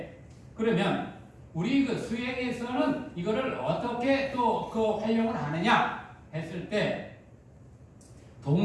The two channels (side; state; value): both; identical; correlation 1.00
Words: 그러면 우리 그 수행에서는 이거를 어떻게 또 그 활용을 하느냐 했을 때